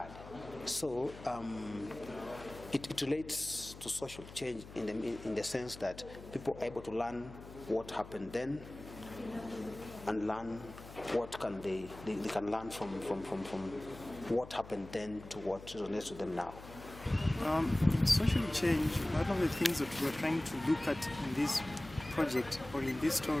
So it relates to social change in the sense that people are able to learn what happened then and learn what they can learn from what happened then to what resonates with them now. Social change, one of the things that we're trying to look at in this project or in this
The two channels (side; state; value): left; noise; hum, 15 dB below the sound